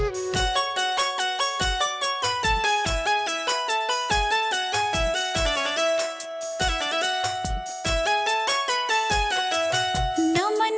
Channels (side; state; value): both; identical; correlation 1.00